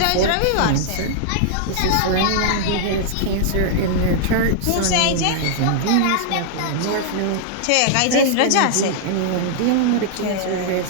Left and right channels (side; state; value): both; different; correlation -0.01